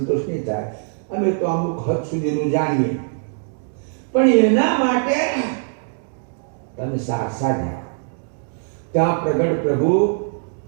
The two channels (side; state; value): left; silent; digital silence